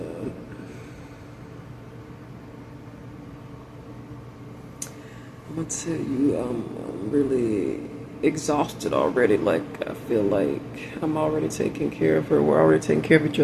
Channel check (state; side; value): identical; both; correlation 1.00